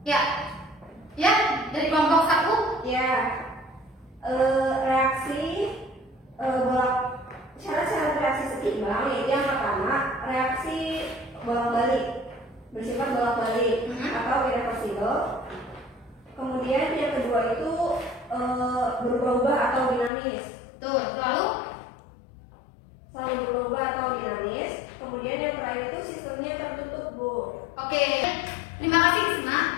Ya, ya dari kelompok 1. Ya, reaksi syarat-syarat reaksi seimbang yaitu yang pertama reaksi bolak-balik bersifat bolak-balik atau irreversible. Kemudian yang kedua itu berubah-ubah atau dinamis. Tuh, lalu Selalu berubah atau dinamis. Kemudian yang terakhir itu sistemnya tertutup, Bu. oke. Terima kasih Risma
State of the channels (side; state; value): right; drops out; at 20.1 s